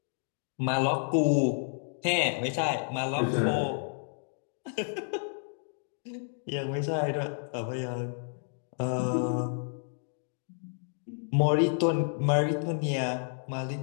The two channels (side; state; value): right; silent; digital silence